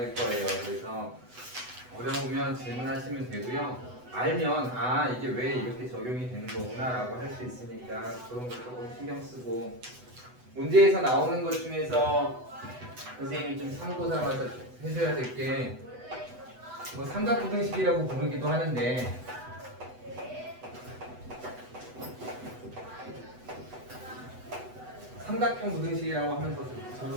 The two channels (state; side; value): late; left; 8.0 ms